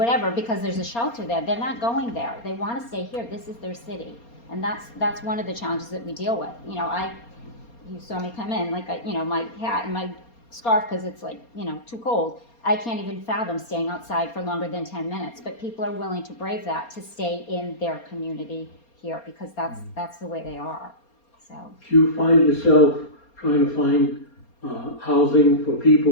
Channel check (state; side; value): late; right; 4.3 ms